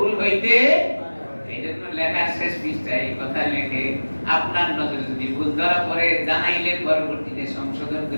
হইতে, এইজন্য লেখার শেষ পৃষ্ঠায় এই কথা লেখে আপনার নজরে যদি ভুল ধরা পড়ে জানাইলে পরবর্তীতে সংশোধন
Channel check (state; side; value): inverted; both; correlation -1.00